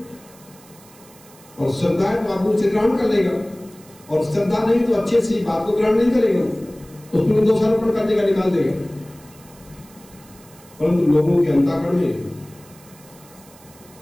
और श्रद्धा है तो आप उसे ग्रहण कर लेगा, और श्रद्धा नहीं तो अच्छे से बात को ग्रहण नहीं करेगा, उसमें दोषारोपण करने का निकाल देगा। परंतु लोगों के अंतःकरण में,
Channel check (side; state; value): right; noise; hiss, 24 dB below the sound